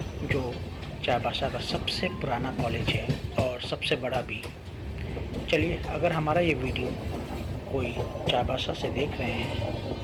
जो चाईबासा का सबसे पुराना कॉलेज है और सबसे बड़ा भी। चलिए, अगर हमारा ये वीडियो कोई चाईबासा से देख रहे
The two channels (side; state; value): both; identical; correlation 1.00